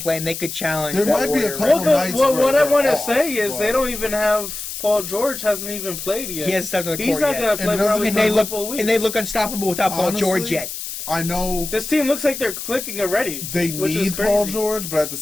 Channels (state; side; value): noise; left; hiss, 8 dB below the sound